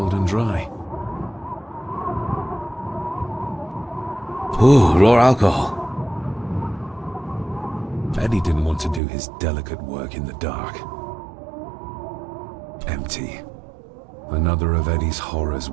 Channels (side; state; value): left; drops out; at 9.0 s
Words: and dry. Ooh, raw alcohol. Eddie didn't want to do his delicate work in the dark. Empty. Another of Eddie's horrors